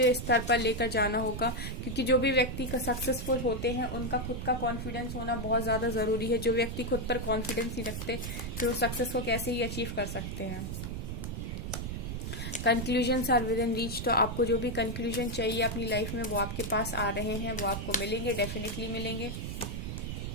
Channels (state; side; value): noise; right; rumble, 5 dB below the sound